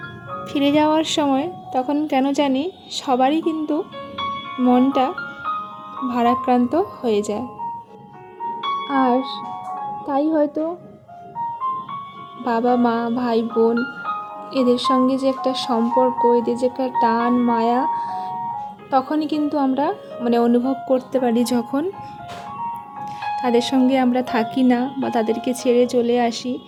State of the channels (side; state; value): both; identical; correlation 1.00